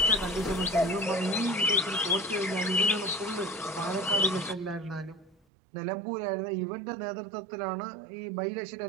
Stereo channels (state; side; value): drops out; left; at 5.4 s